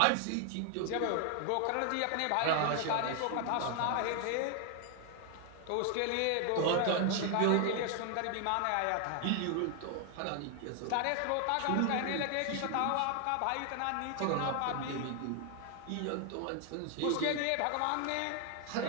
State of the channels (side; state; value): both; different; correlation 0.00